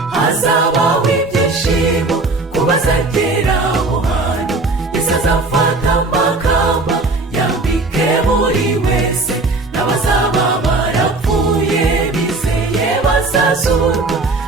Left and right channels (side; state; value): left; quieter; 3.3 dB